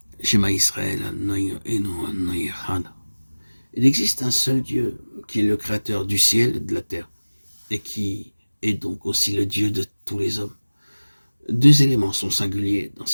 Shema Israël, Anoï Echad. Il existe un seul Dieu qui est le créateur du ciel et de la terre et qui est donc aussi le Dieu de tous les hommes. Deux éléments sont singuliers dans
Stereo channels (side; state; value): both; inverted; correlation -1.00